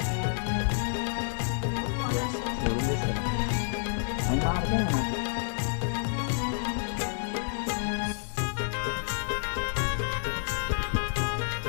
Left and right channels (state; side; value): silent; right; 58 dB below the other